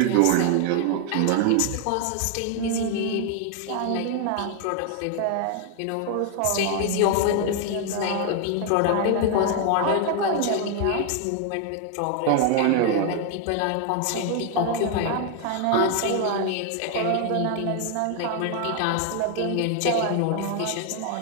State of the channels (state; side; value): different; both; correlation 0.00